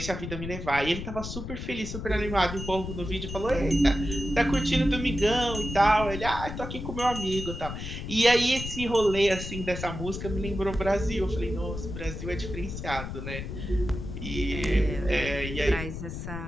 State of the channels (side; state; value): left; noise; rumble, 7 dB below the sound